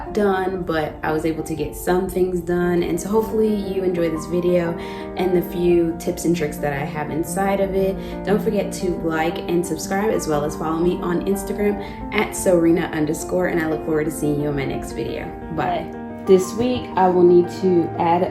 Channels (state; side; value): identical; both; correlation 1.00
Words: done, but I was able to get some things done, and so hopefully you enjoy this video and the few tips and tricks that I have inside of it. Don't forget to like and subscribe, as well as follow me on Instagram at SewRena_, and I look forward to seeing you in my next video. Bye. This week I will need to add